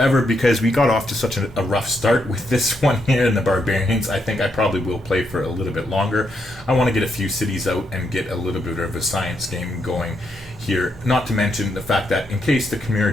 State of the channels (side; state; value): both; normal; correlation 0.79